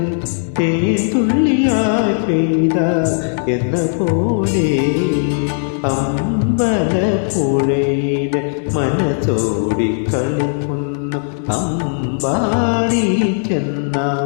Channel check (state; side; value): silent; right; digital silence